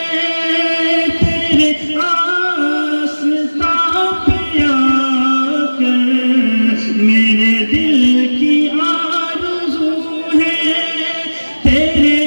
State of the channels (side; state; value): both; inverted; correlation -1.00